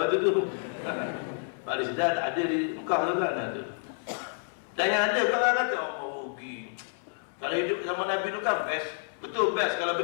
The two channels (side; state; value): right; silent; 58 dB below the other